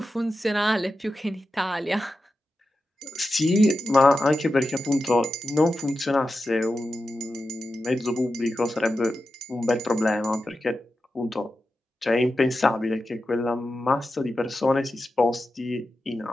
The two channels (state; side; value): normal; both; correlation 0.91